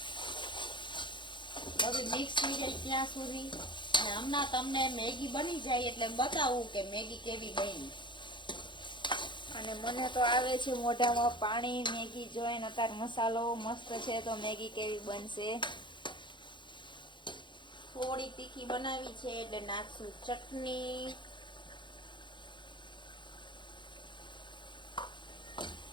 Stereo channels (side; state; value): right; late; 0.23 ms